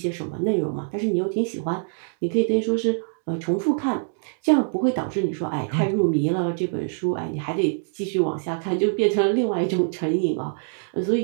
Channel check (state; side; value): silent; left; digital silence